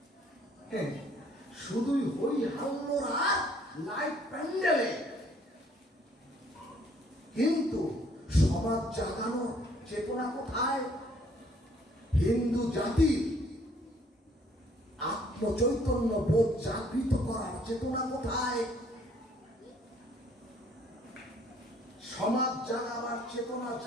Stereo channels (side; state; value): both; normal; correlation 0.62